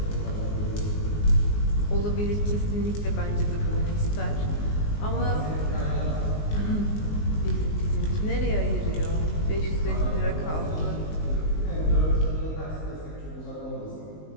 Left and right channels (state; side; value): late; right; 19 ms